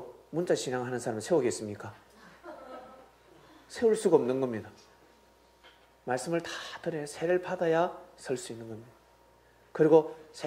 문자 신앙하는 사람은 세우겠습니까? 세울 수가 없는 겁니다. 말씀을 다 들어야 세례를 받아야 설 수 있는 겁니다. 그리고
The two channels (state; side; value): identical; both; correlation 1.00